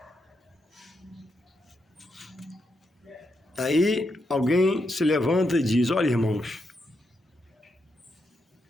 Aí alguém se levanta e diz: olha, irmãos,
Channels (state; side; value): normal; both; correlation 0.82